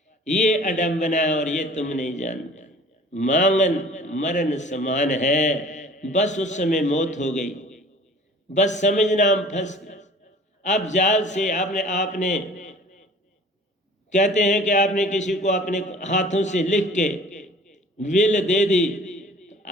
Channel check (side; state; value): both; normal; correlation 0.47